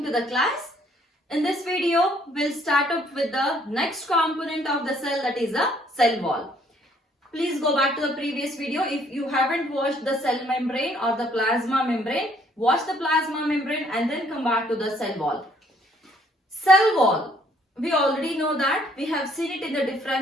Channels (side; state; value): both; normal; correlation 0.64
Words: to the class. In this video, we'll start up with the next component of the cell, that is the cell wall. Please go back to the previous video. If you haven't watched the cell membrane or the plasma membrane, watch the plasma membrane and then come back to the cell wall. Cell wall. We already know that. We have seen it in the